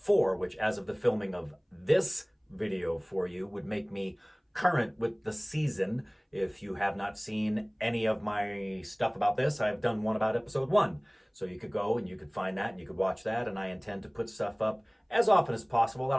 which, as of the filming of this video for you, would make me current with the season. If you have not seen any of my stuff about this, I've done one about episode 1. So you could go and you could find that and you could watch that, and I intend to put stuff up as often as possible. I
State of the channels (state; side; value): identical; both; correlation 1.00